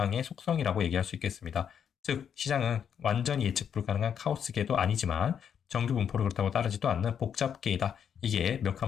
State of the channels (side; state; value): right; quieter; 8.1 dB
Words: 속성이라고 얘기할 수 있겠습니다. 즉 시장은 완전히 예측 불가능한 카오스계도 아니지만 정규 분포를 그렇다고 따르지도 않는 복잡계이다. 이게